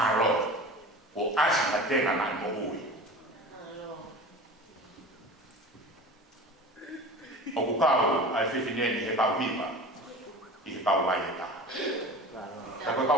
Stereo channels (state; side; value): normal; both; correlation 0.36